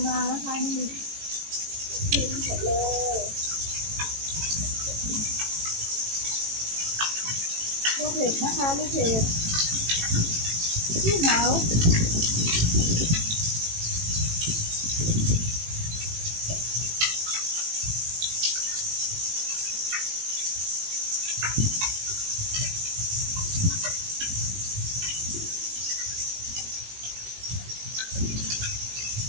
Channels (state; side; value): late; left; 18 ms